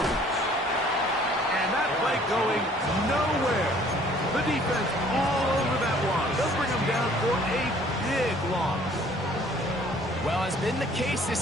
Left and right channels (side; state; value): both; normal; correlation 0.56